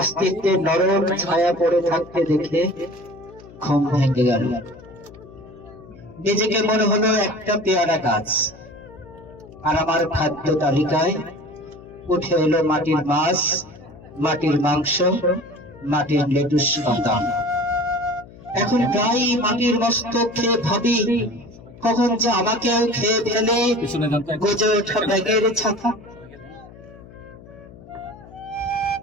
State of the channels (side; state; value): left; noise; hum, 20 dB below the sound